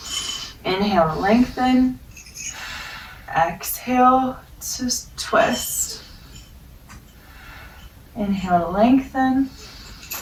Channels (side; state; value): both; identical; correlation 1.00